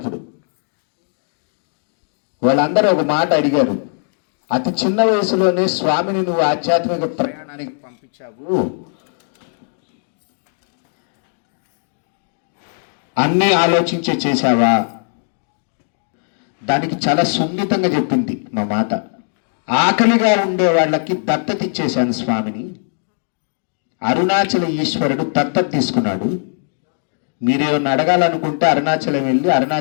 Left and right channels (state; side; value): silent; right; digital silence